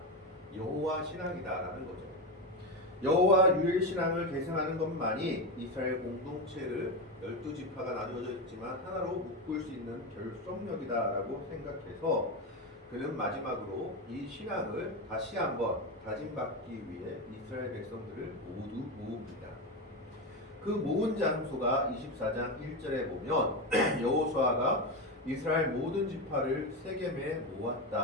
여호와 신앙이다라는 거죠. 여호와 유일 신앙을 계승하는 것만이 이스라엘 공동체를 12지파가 나누어져 있지만 하나로 묶을 수 있는 결속력이다라고 생각해서 그는 마지막으로 이 신앙을 다시 한번 다짐받기 위해 이스라엘 백성들을 모두 모읍니다. 그 모은 장소가 24장 1절에 보면 여호수아가 이스라엘 모든 지파를 세겜에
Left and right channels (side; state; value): both; normal; correlation 0.15